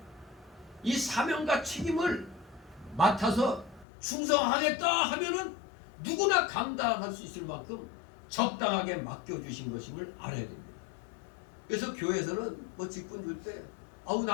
이 사명과 책임을 맡아서 충성하겠다 하면은 누구나 감당할 수 있을 만큼 적당하게 맡겨주신 것임을 알아야 됩니다. 그래서 교회에서는 뭐 직분 줄 때 아우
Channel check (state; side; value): drops out; right; at 3.9 s